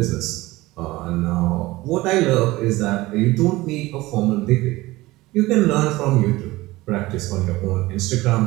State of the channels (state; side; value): quieter; left; 19.3 dB